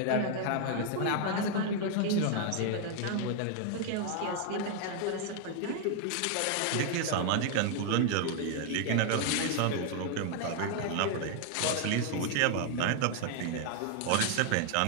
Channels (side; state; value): both; different; correlation 0.00